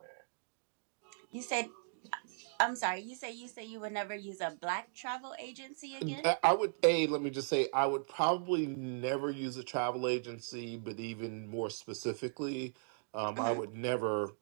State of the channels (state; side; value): silent; left; digital silence